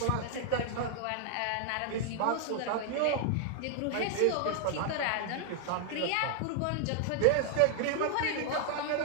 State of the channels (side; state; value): both; different; correlation 0.00